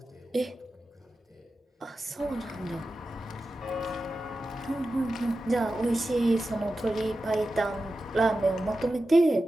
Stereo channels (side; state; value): both; normal; correlation 0.93